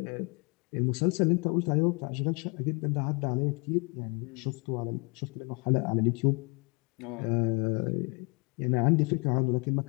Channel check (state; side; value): quieter; right; 32.9 dB